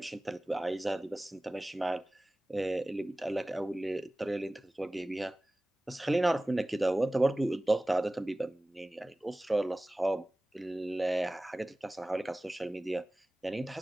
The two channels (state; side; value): normal; both; correlation 0.98